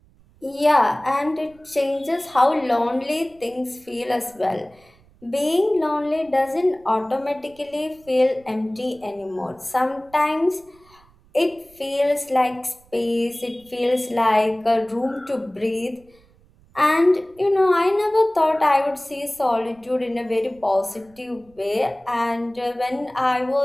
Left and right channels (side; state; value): right; noise; rumble, 29 dB below the sound